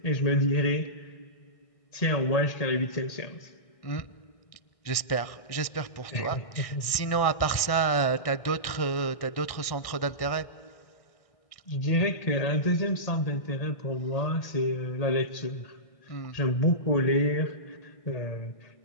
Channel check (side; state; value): right; late; 1.6 ms